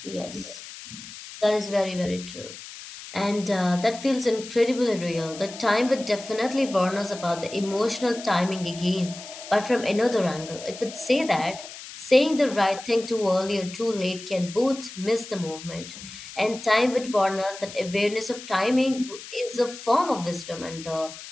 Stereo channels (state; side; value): noise; left; hiss, 14 dB below the sound